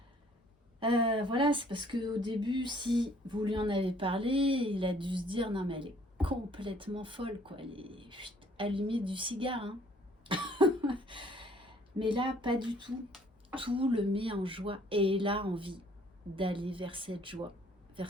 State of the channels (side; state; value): both; normal; correlation 0.59